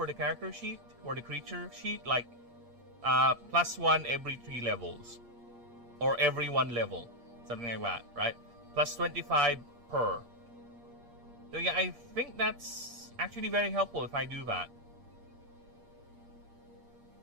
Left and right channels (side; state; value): left; late; 8.5 ms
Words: the character sheet or the creature sheet, like +1 every 3 levels or every 1 level, something like that, right? Plus 25 per. So yeah, I think that's actually very helpful if I do that.